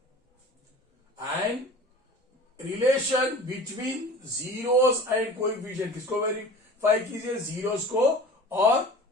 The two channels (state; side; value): normal; both; correlation 0.39